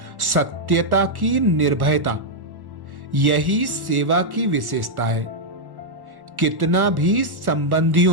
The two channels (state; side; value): late; left; 1.1 ms